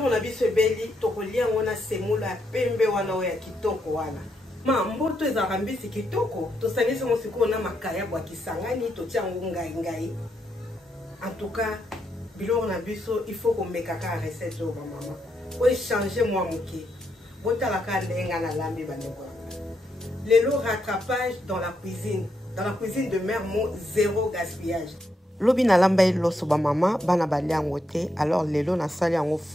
na biso ebeli tokolia ngona semula pembe wana oya kitoko wana. Ma mboto ezaka mbisi kitoko, tosangisi mo sikoyo na makaya bwa kisangani totia ngo ngai. En tout cas, biloko na biso il faut qu'on meka ka recette o ba mama. O changer moi moké. Botala ka ndenga na lambi bandeko. Lelo rattrapage dans la cuisine. Dans la cuisine de Mère Mo, zéro gaspillage. Lobi na lamba loso ba mama bana balia ngote alors lelo na sali yango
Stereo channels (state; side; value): normal; both; correlation 0.80